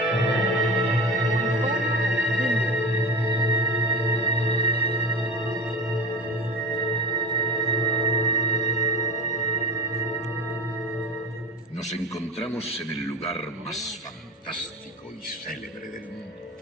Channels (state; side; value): normal; both; correlation 0.31